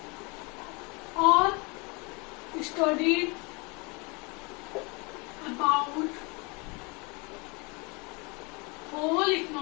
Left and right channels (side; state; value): right; quieter; 29.0 dB